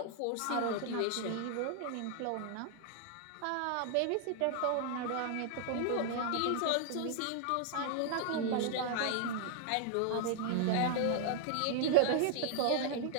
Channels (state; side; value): different; both; correlation -0.01